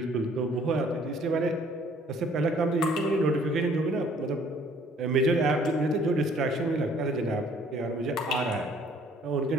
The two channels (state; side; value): normal; both; correlation 0.59